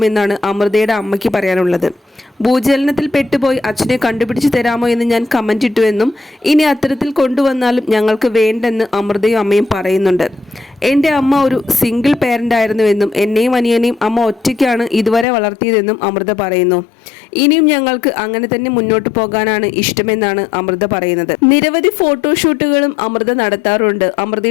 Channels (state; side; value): drops out; right; at 15.2 s